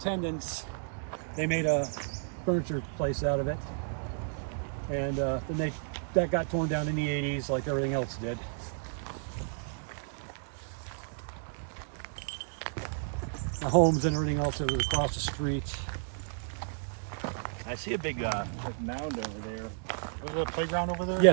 they made a furniture place out of it. And then that got torn down in the 80s like everything else did. The homes and everything else that was across the street. I see a big mound over there. Was there a playground over there?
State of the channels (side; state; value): left; silent; digital silence